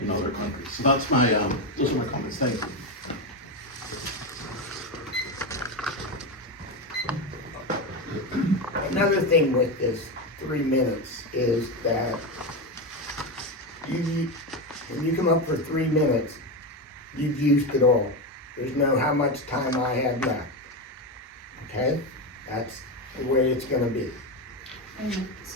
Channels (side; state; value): both; normal; correlation 0.13